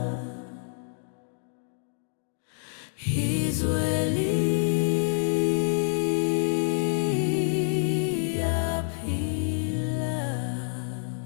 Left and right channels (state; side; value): silent; right; digital silence